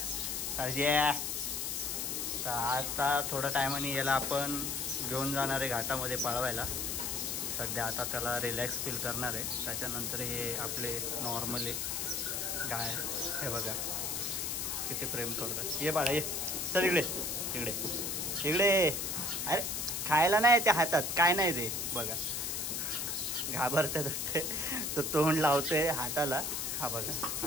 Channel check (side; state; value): left; noise; hiss, 1 dB below the sound